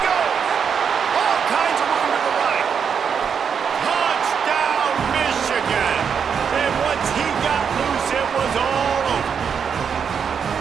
goes. All kinds of room to the right. Touchdown, Michigan. And once he got loose, it was all over.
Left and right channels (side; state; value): left; quieter; 7.0 dB